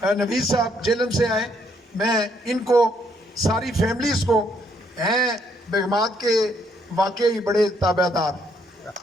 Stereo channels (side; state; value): both; normal; correlation 0.71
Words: نوید صاحب جیلم سے آئے، میں ان کو ساری فیملیز کو ہیں بیگمات کے واقعی بڑے تابع دار،